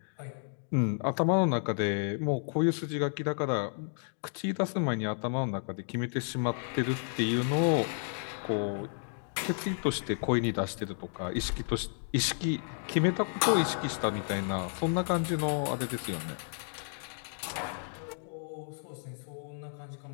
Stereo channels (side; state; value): right; silent; digital silence